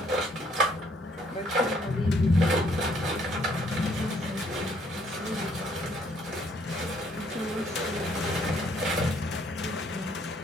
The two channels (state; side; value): normal; both; correlation 0.66